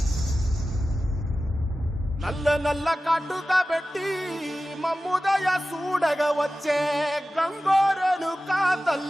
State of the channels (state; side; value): normal; both; correlation 0.95